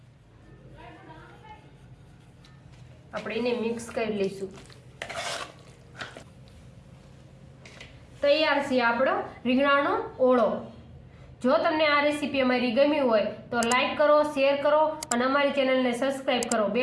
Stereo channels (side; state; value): both; identical; correlation 1.00